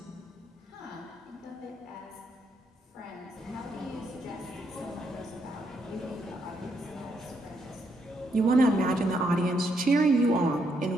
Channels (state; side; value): normal; both; correlation 0.76